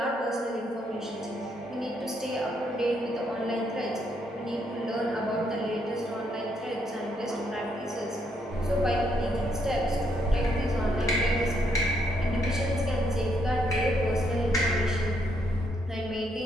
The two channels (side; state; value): both; normal; correlation 0.74